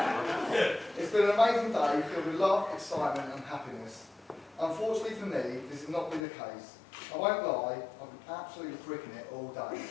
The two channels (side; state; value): right; drops out; at 6.2 s